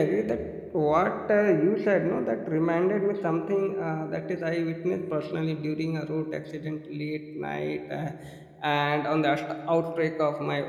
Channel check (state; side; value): identical; both; correlation 1.00